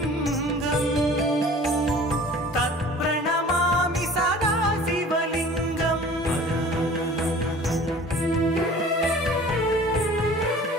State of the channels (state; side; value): normal; both; correlation 0.45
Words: तत्प्रणमामि सदा शिवलिङ्गम्।